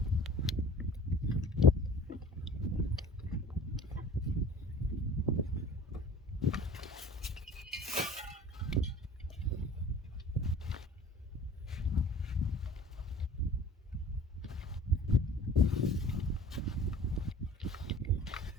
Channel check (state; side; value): normal; both; correlation 0.46